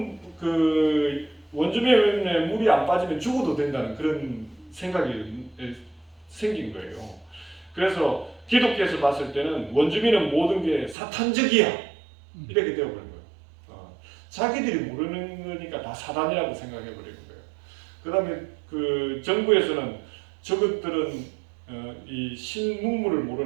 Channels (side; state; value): left; drops out; at 11.0 s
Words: 그 원주민의 물이 안 빠지면 죽어도 된다는 그런 생각이 생긴 거예요. 그래서 기독교에서 봤을 때는 원주민은 모든 게 사탄적이야 이렇게 되어버린 거예요. 자기들이 모르는 거니까 다 사단이라고 생각해버리는 거예요. 그 다음에 그 정부에서는 저것들은 이 신문물을